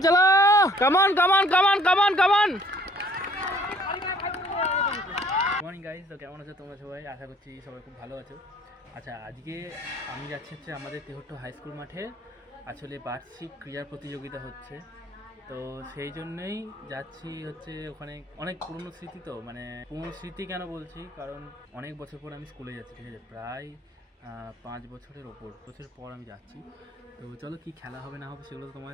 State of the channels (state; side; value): normal; both; correlation 0.59